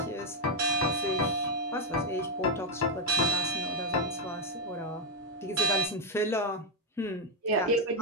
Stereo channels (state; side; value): normal; both; correlation 0.02